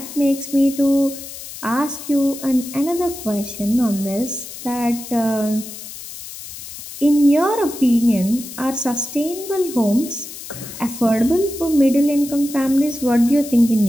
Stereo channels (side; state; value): left; noise; hiss, 12 dB below the sound